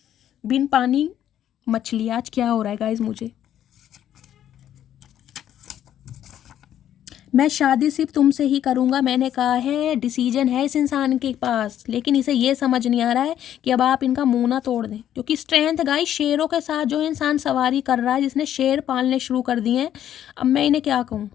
बिन पानी मछली। आज क्या हो रहा है गाइस मुझे। मैं शादी सिर्फ तुमसे ही करूँगा, मैंने कहा है। डिसीजन है इस इंसान के पास, लेकिन इसे ये समझ नहीं आ रहा है कि अब आप इनका मुंह ना तोड़ दें। क्योंकि स्ट्रेंथ गाइस, शेरों के साथ जो इंसान सवारी कर रहा है, जिसने शेर पालने शुरू कर दिए हैं, अब मैं इन्हें क्या कहूँ,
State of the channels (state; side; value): quieter; right; 10.9 dB